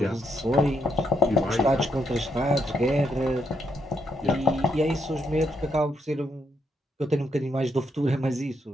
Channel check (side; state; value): both; normal; correlation 0.77